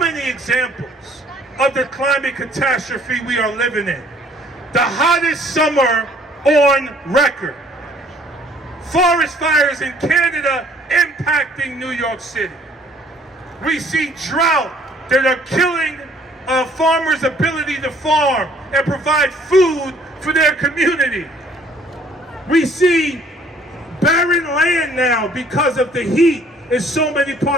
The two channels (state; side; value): normal; both; correlation 0.59